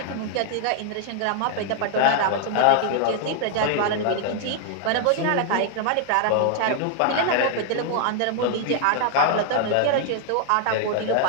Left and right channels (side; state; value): both; different; correlation 0.00